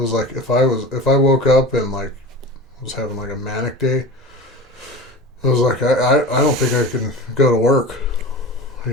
like if I woke up and like was having like a manic day, it was like I don't think I can go to work. You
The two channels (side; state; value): both; normal; correlation 0.33